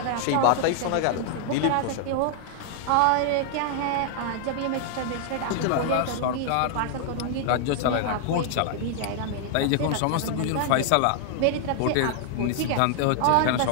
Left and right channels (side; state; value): both; different; correlation 0.00